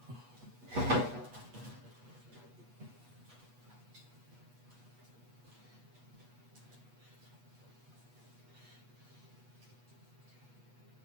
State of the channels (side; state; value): left; late; 8.3 ms